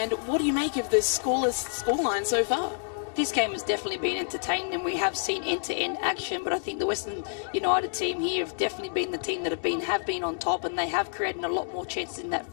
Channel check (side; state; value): right; silent; digital silence